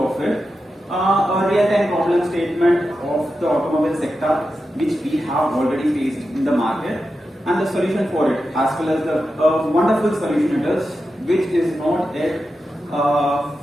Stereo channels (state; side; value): normal; both; correlation 0.90